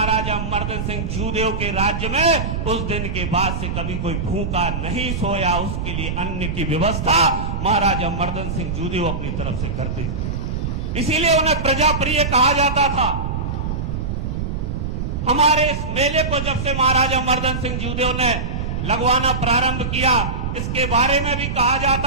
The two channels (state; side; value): noise; right; rumble, 3 dB below the sound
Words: मर्दन सिंह जूदेव के राज्य में उस दिन के बाद से कभी कोई भूखा नहीं सोया। उसके लिए अन्न की व्यवस्था महाराजा मर्दन सिंह जूदेव अपनी तरफ से करते थे, इसीलिए उन्हें प्रजाप्रिय कहा जाता था। हमारे इस मेले को जब से महाराजा मर्दन सिंह जूदेव ने लगवाना प्रारंभ किया, इसके बारे में भी कहा